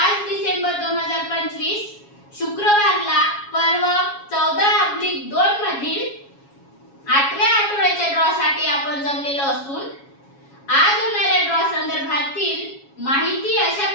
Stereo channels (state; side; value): late; right; 7.3 ms